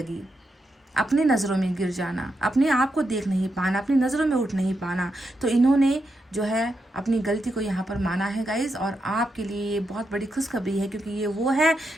अपनी नज़रों में गिर जाना, अपने आप को देख नहीं पाना, अपनी नज़रों में उठ नहीं पाना। तो इन्होंने जो है अपनी गलती को यहाँ पर माना है गाइज, और आपके लिए ये बहुत बड़ी खुशखबरी है, क्योंकि ये वो है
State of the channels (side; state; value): both; normal; correlation 0.84